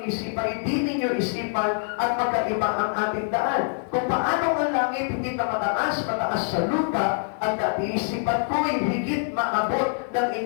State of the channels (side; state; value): right; silent; digital silence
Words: isipan, hindi ninyo isipan at magkaiba ang ating daan. Kung paano ang langit higit na mataas sa lupa, at isipan ko ay higit maabot ng